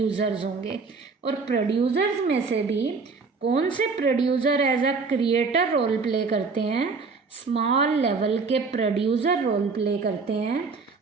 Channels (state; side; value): quieter; left; 4.6 dB